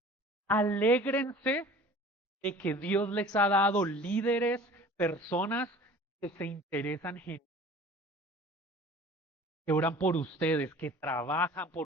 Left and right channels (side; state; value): both; normal; correlation 0.45